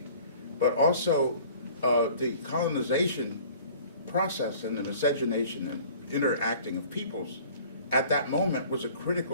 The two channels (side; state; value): both; inverted; correlation -0.49